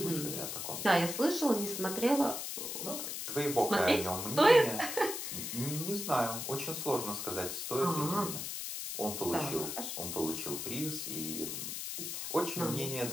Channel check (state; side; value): noise; left; hiss, 5 dB below the sound